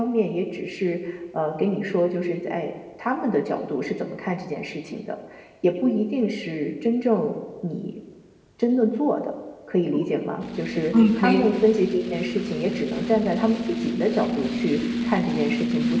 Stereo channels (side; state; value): both; identical; correlation 1.00